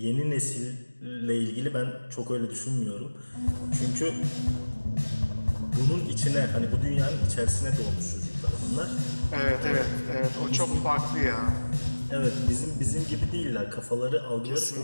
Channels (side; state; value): both; inverted; correlation -1.00